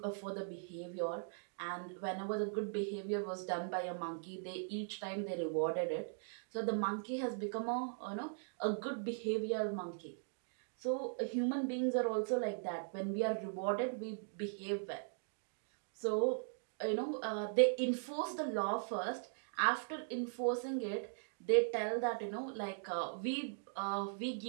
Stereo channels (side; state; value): left; silent; digital silence